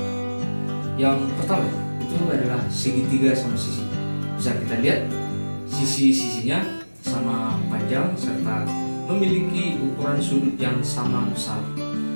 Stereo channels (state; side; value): inverted; both; correlation -1.00